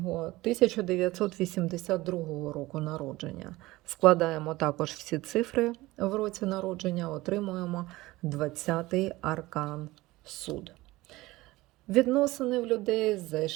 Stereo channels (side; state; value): left; quieter; 19.2 dB